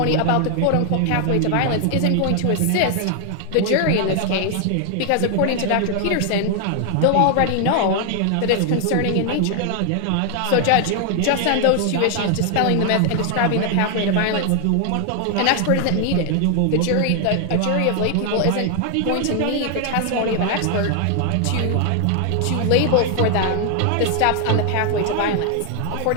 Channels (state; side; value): different; both; correlation 0.00